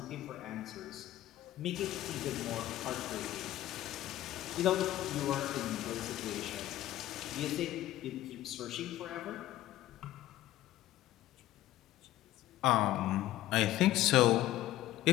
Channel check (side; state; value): right; quieter; 14.5 dB